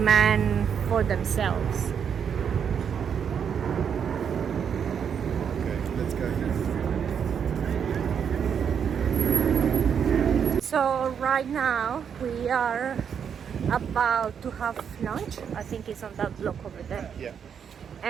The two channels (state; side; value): quieter; left; 7.5 dB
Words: for themselves. Okay, let's go now. So right now we are about to have lunch. I think it's on that block over there. Yeah.